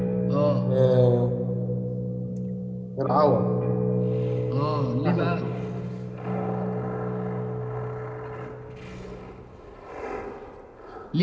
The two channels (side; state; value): both; identical; correlation 1.00